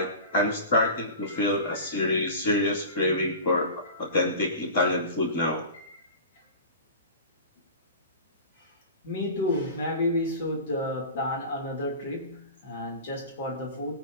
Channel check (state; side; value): inverted; both; correlation -0.35